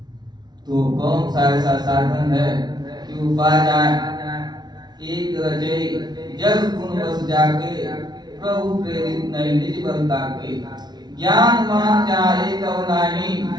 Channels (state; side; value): late; left; 0.20 ms